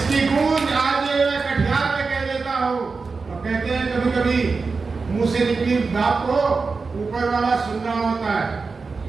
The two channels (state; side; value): quieter; left; 4.4 dB